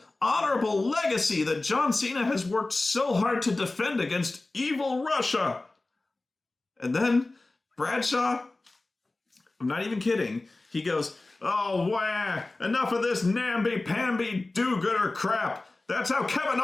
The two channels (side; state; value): right; quieter; 3.1 dB